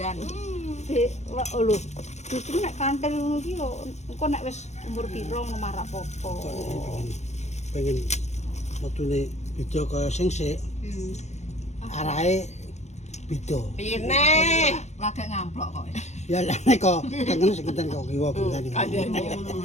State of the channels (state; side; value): late; right; 0.33 ms